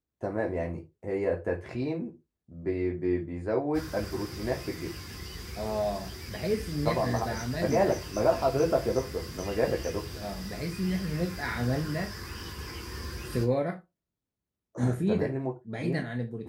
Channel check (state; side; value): identical; both; correlation 1.00